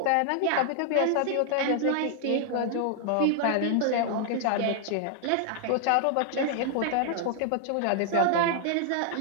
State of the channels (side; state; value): both; different; correlation -0.01